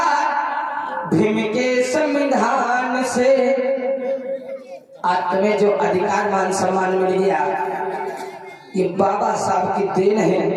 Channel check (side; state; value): both; identical; correlation 1.00